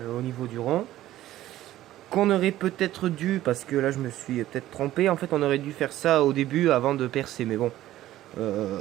niveau du rond. Qu'on aurait peut-être dû, parce que là je me suis peut-être trompé, en fait on aurait dû faire ça au début avant de percer. Mais bon,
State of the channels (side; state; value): left; quieter; 14.3 dB